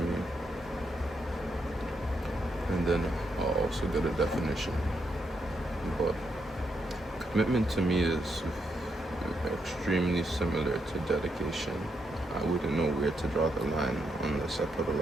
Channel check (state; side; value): normal; both; correlation 0.79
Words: and then I'll also get a definition. But commitment to me is extremely similar to dedication. I wouldn't know where to draw the line unless I put a